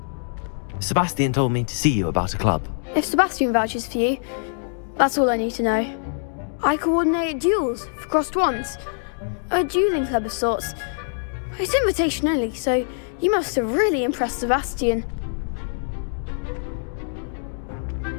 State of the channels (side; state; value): right; silent; digital silence